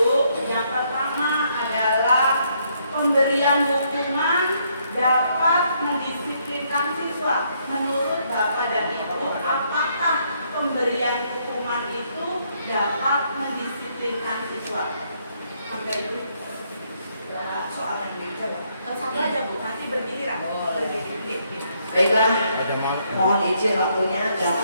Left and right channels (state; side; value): inverted; both; correlation -0.72